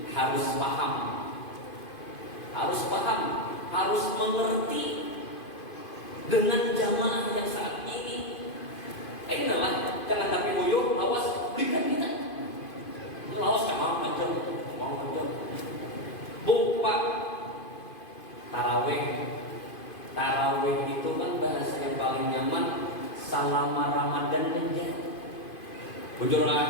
harus paham, harus mengerti dengan jamaah yang saat ini. Inilah jangan tapi uyuh, awas berikan kita. Lawas kan mau macam. Pak, Tarawih itu kan bahasa yang paling nyaman selama Ramadan aja.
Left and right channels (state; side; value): late; right; 2.5 ms